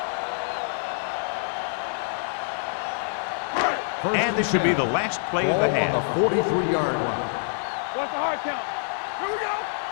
And this should be the last play of the half. On the 43-yard line. What's the hard count? Here we go.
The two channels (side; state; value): right; silent; digital silence